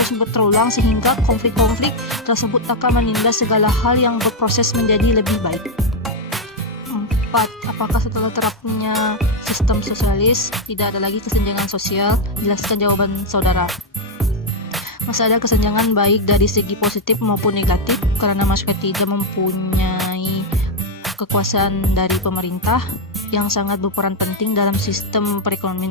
berulang sehingga konflik-konflik tersebut akan menindas segala hal yang berproses menjadi lebih baik. 4. Apakah setelah terapnya sistem sosialis tidak ada lagi kesenjangan sosial? Jelaskan jawaban saudara. Masih ada kesenjangan baik dari segi positif maupun negatif karena masyarakat tidak mempunyai kekuasaan dari pemerintah yang sangat berperan penting dalam sistem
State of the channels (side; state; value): both; normal; correlation 0.02